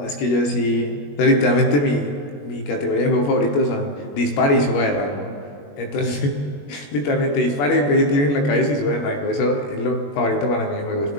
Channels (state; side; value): late; right; 21 ms